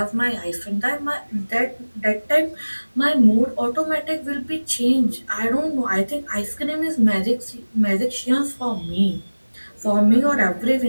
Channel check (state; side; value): inverted; both; correlation -1.00